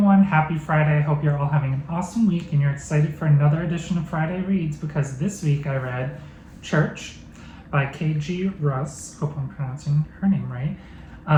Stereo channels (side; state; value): both; identical; correlation 1.00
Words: happy Friday. I hope you're all having an awesome week and you're excited for another edition of Friday Reads, because this week I read Church by K.G. Russ, hope I'm pronouncing her name